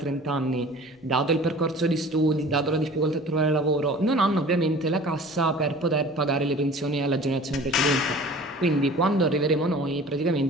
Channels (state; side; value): normal; both; correlation 0.44